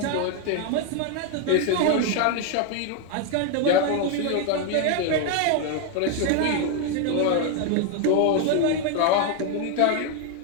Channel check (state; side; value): different; both; correlation 0.00